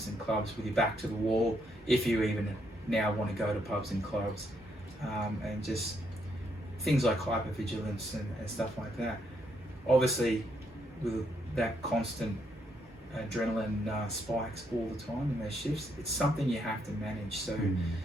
and clubs with your back to the wall, if you even now want to go to pubs and clubs, and just things like hypervigilance and stuff like that. Obviously, with that constant adrenaline spikes all the time in those shifts, it's something you have to manage. So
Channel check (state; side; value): normal; both; correlation 0.75